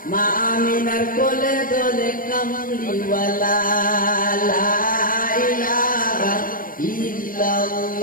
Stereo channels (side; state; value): right; late; 0.40 ms